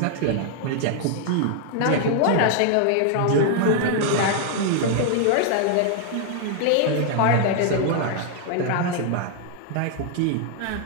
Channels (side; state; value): both; different; correlation 0.00